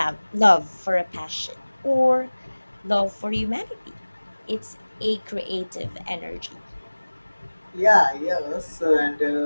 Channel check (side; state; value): both; inverted; correlation -1.00